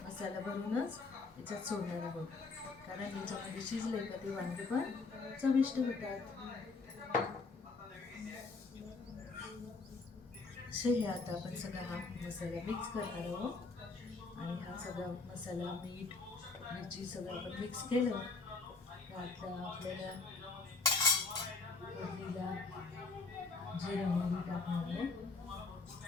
मसाला भरूनच याच्यात सोडणार आहोत, कारण याच्यामध्ये शिजले का ते वांगे पण चविष्ट होतात. असे हे आता आपण सगळा हा मसाला मिक्स करणार आहोत आणि हा सगळा मसाला, मीठ, मिरची सगळं आपण मिक्स केलं. आता आपल्याला फोडणीला जिरं मोहरी टाकणार आहोत.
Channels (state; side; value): quieter; right; 4.0 dB